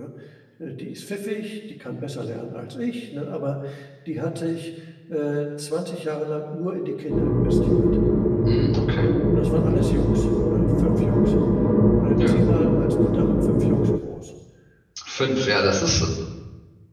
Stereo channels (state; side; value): identical; both; correlation 1.00